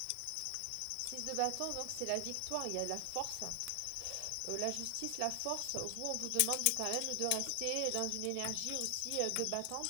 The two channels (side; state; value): both; different; correlation 0.00